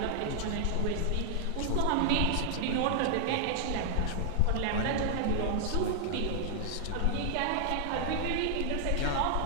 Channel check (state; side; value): different; both; correlation 0.00